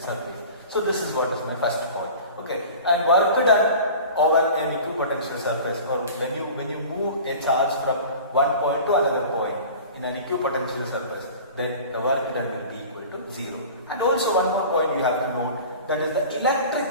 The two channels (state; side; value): inverted; both; correlation -0.39